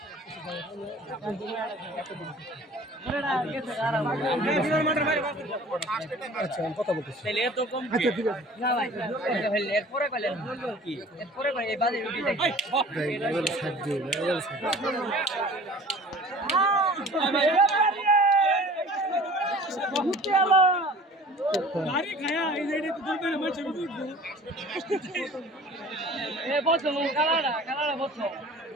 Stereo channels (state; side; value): normal; both; correlation 0.45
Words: গাড়ি খায়া এই যে এটা তো দুটো মাছ উঠবো এ বসো কালাড়া বসো